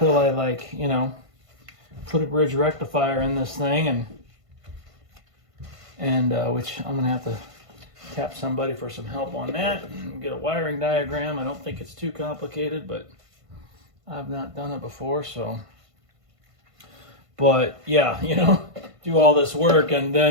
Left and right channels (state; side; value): late; left; 1.5 ms